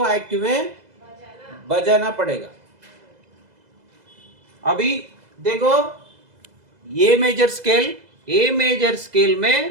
एक्टिव में बजाना पड़ेगा। अभी देखो ए मेजर स्केल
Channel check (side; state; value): left; late; 2.0 ms